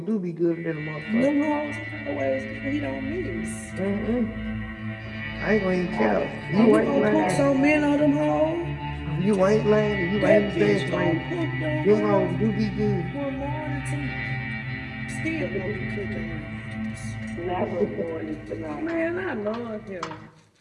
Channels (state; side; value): identical; both; correlation 1.00